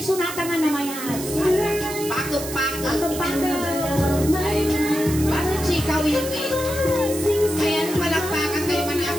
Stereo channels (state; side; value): noise; right; hiss, 9 dB below the sound